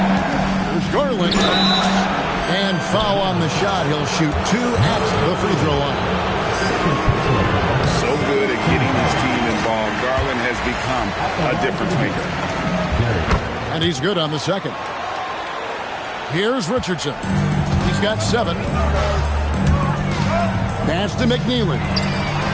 Here's Garland. And foul on the shot. He'll shoot 2 at the free throw line. So good at getting his team involved. Garland has become a difference maker. And he's good on the second. Here's Richardson. He's got 7. Pass to McNeely.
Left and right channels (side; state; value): both; identical; correlation 1.00